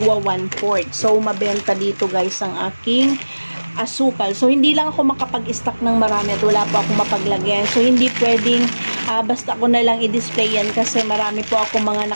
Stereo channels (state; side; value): inverted; both; correlation -1.00